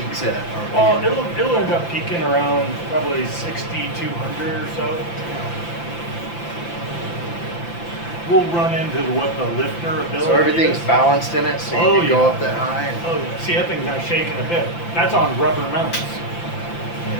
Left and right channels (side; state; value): right; late; 5.9 ms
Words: at? Well, it'll end up peaking around probably 6,200 or so. We'll run into what the lifter ability So everything's is. balanced in it, so you can go up that high. And oh yeah. See, that thing's not shaking a bit. That's on rubber mounts.